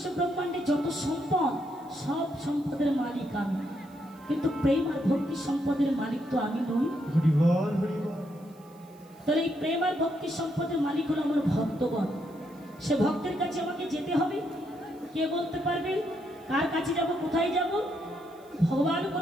ব্রহ্মাণ্ডে যত সম্পদ, সব সম্পদের মালিক আমি, কিন্তু প্রেম আর ভক্তি সম্পদের মালিক তো আমি নই। তাহলে এই প্রেম আর ভক্তি সম্পদের মালিক হলো আমার ভক্তগণ। সে ভক্তের কাছে আমাকে যেতে হবে। কে বলতে পারবে কার কাছে যাব, কোথায় যাব? ভগবান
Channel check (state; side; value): noise; right; hiss, 30 dB below the sound